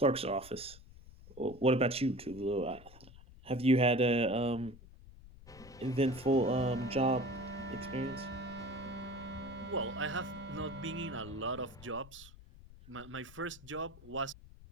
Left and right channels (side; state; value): left; noise; rumble, 19 dB below the sound